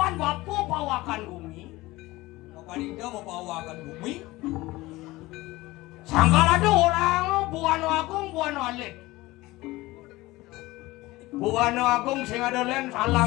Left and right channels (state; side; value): quieter; right; 19.6 dB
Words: bapu pawakan bumi. Mapan Indo mau bawakan bumi. Sangkal ada orang Buano Agung Buano Alit. Buano Agung sing ada len